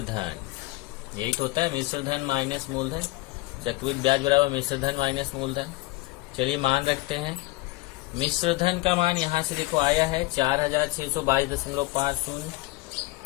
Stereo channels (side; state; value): right; quieter; 20.7 dB